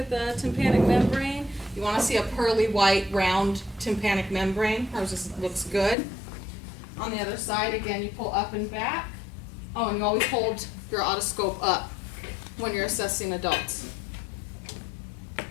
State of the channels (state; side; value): drops out; right; at 6.0 s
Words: the tympanic membrane. You want to see a pearly white round tympanic membrane. Hers just looks good. On the other side, again, you pull up and back. Oh, and you always hold your otoscope up when you're assessing adults.